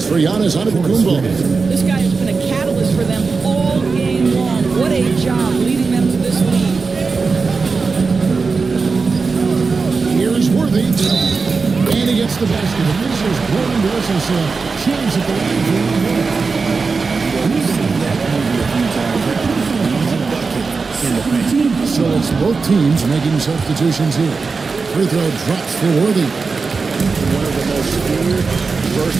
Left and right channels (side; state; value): left; quieter; 4.5 dB